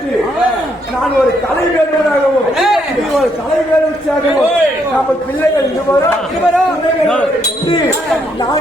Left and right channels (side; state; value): both; normal; correlation 0.73